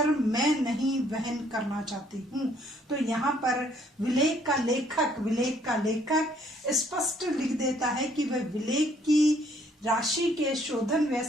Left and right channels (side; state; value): both; normal; correlation 0.64